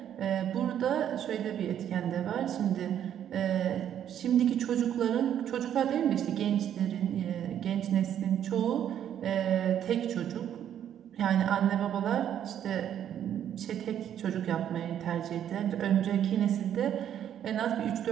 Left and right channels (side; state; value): left; quieter; 10.0 dB